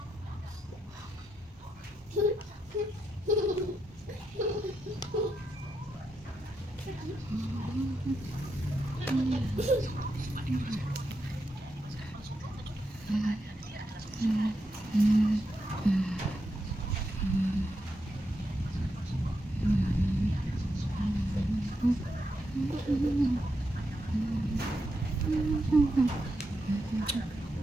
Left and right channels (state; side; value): normal; both; correlation 0.84